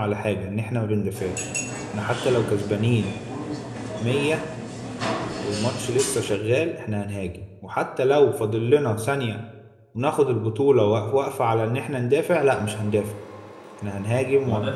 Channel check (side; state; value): both; identical; correlation 1.00